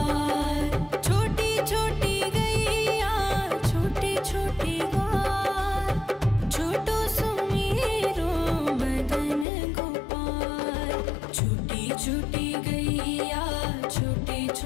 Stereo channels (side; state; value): right; drops out; at 9.5 s